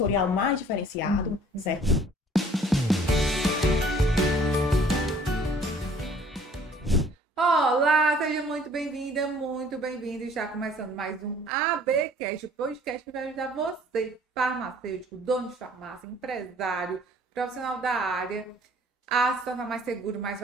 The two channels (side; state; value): both; normal; correlation 0.55